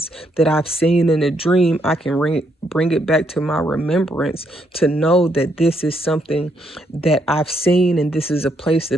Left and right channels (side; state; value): both; normal; correlation 0.75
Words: that I've seen in a dream, I can bring it back to my remembrance to know that this is something that I've seen and this is a place